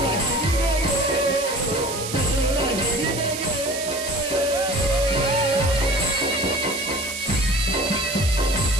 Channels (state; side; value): noise; right; hiss, 7 dB below the sound